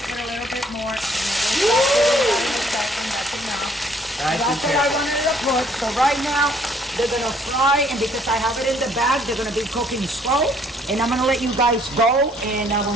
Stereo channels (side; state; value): both; normal; correlation 0.63